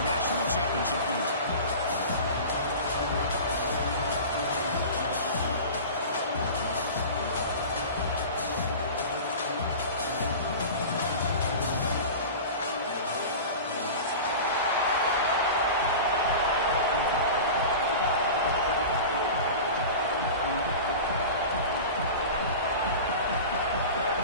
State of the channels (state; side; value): inverted; both; correlation -0.33